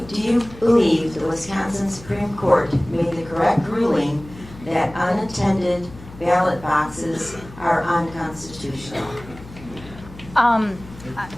Do you believe the Wisconsin Supreme Court made the correct ruling that unattended ballot boxes are unconstitutional?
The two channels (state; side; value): noise; left; hum, 18 dB below the sound